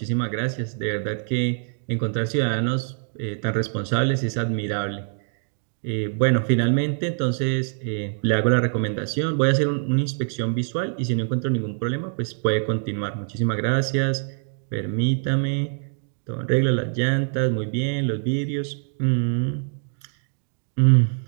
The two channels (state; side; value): silent; left; digital silence